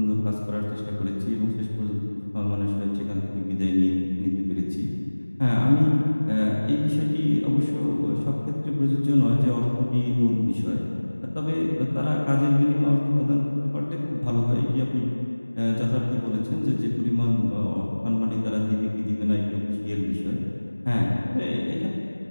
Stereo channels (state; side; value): inverted; both; correlation -1.00